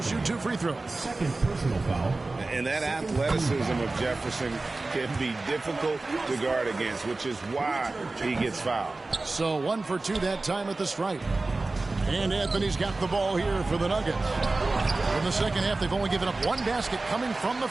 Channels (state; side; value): quieter; left; 3.3 dB